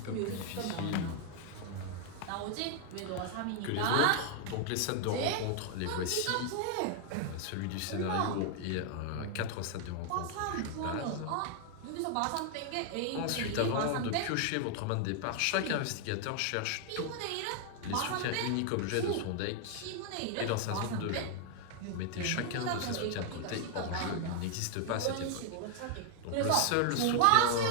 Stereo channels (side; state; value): both; different; correlation 0.00